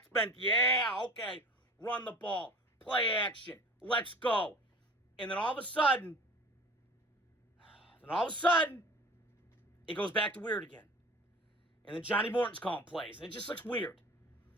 run the ball, play action, let's go. And then all of a sudden, it goes back to weird again. And then Johnny Morton's calling plays, and it just looks weird.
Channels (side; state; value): both; normal; correlation 0.42